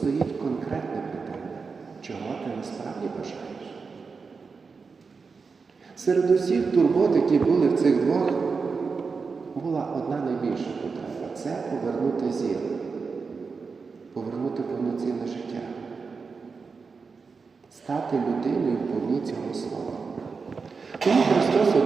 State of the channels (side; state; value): left; quieter; 4.9 dB